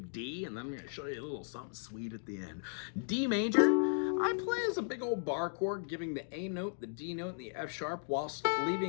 D, and then I'm going to show you a little something sweet at the end. D major, I play as a big old bar chord, giving the A note, the D note, and the F sharp, whilst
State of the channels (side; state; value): right; silent; digital silence